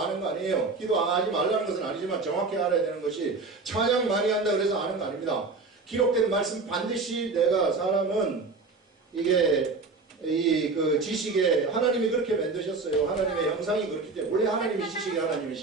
아는 거 아니에요. 기도 하지 말라는 것은 아니지만 정확히 알아야 되는 것이, 찬양 많이 한다 그래서 아는 거 아닙니다. 기록된 말씀 반드시 사람은 이게 그 지식에 하나님이 그렇게 만드셨어요. 하나님의 형상이 그렇기 때문에, 원래 하나님이 지식이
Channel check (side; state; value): left; quieter; 4.0 dB